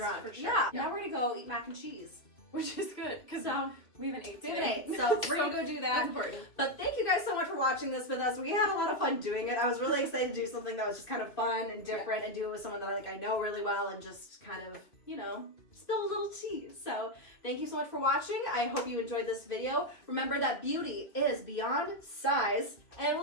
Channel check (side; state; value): right; late; 2.2 ms